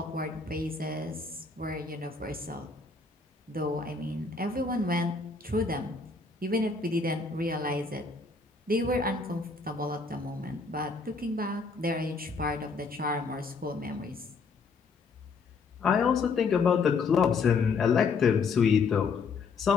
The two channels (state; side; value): quieter; right; 4.5 dB